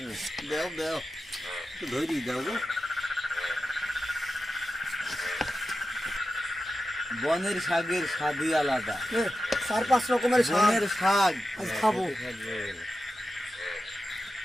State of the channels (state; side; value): normal; both; correlation 0.91